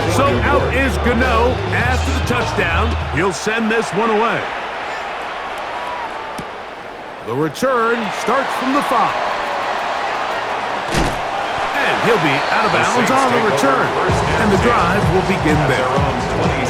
So out is Gano after the touchdown. He'll send this one away. The return starts from the 5. And he'll be out of bounds on the return. And the drive will begin there. On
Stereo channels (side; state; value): both; identical; correlation 1.00